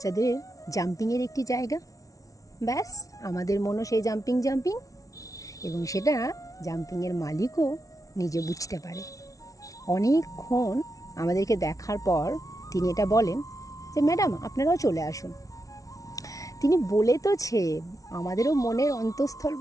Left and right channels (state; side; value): late; right; 0.17 ms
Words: জাম্পিংয়ের একটি জায়গা। ব্যাস, আমাদের মনও সেই জাম্পিং এবং সেটা জাম্পিংয়ের মালিকও নিজে বুঝতে পারে। অনেকক্ষণ আমাদেরকে দেখার পর তিনি এটা বলেন যে ম্যাডাম, আপনারাও চলে আসুন। তিনি বলে তোছে, আমাদেরও মনের অন্তঃস্থল